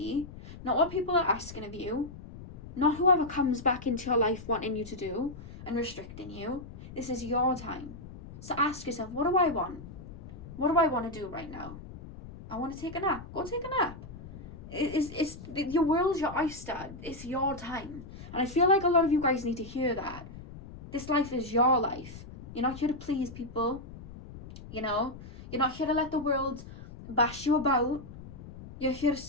not what people are asking of you, not whoever comes back into your life wanting you to do and restricting you. This is your time. So ask yourself, what do I want? What do I want to do right now? I want to take a nap. Go take a nap. It's your world's your oyster. It's your time. And I feel like a lot of you guys need to hear that. This life is your life. You're not here to please people. You're not here to let the world bash you about. You're here to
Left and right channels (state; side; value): noise; left; rumble, 14 dB below the sound